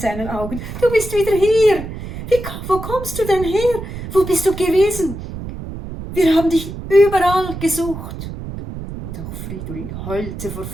Augen. Du bist wieder hier. Wo kommst du denn her? Wo bist du gewesen? Wir haben dich überall gesucht. Und auch Fridolin heulte vor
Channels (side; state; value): right; noise; rumble, 9 dB below the sound